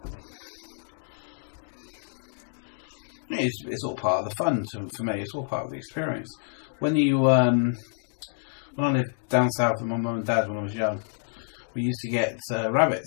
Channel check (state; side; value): silent; right; digital silence